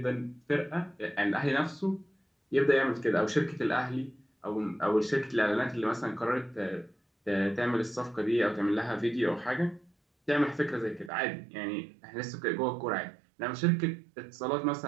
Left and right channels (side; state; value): left; drops out; at 11.1 s